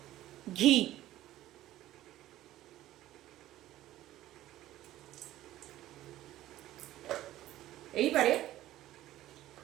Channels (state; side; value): quieter; left; 14.4 dB